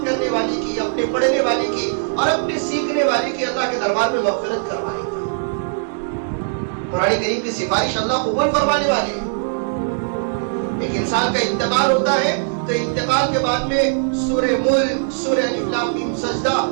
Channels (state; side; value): silent; left; digital silence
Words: کرنے والے کی, اپنے پڑھنے والے کی اور اپنے سیکھنے والے کی اللہ کے دربار میں مغفرت کروائے گا. قرآن کریم کی سفارش اللہ قبول فرمانے والے ہیں. ایک انسان کا انتقال ہوتا ہے تو انتقال کے بعد میں سورہ ملک, سورہ الف لام میم سجدہ,